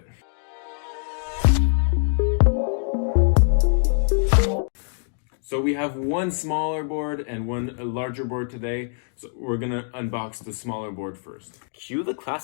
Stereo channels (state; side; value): silent; right; digital silence